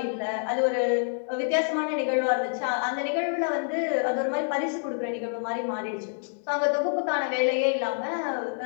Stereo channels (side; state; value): right; silent; 60 dB below the other